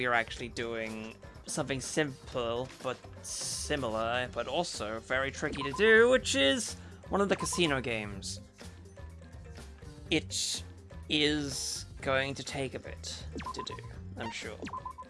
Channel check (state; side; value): identical; both; correlation 1.00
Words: are actually doing something simple, but similar, but also very tricky to do, which is one of the casino games. It is going to take a bit to do, I'm sure.